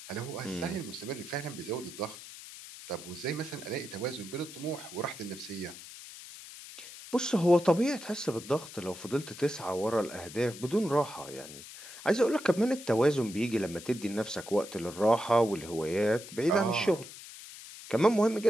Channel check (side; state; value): left; noise; hiss, 14 dB below the sound